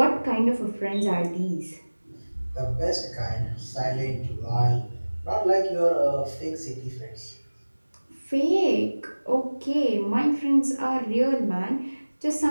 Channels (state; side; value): inverted; both; correlation -1.00